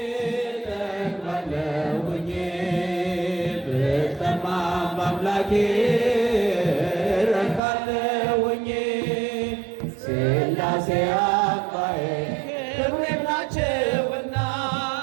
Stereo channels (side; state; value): left; drops out; at 7.6 s